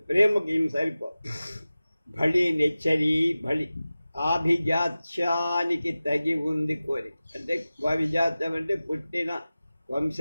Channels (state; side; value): inverted; both; correlation -0.96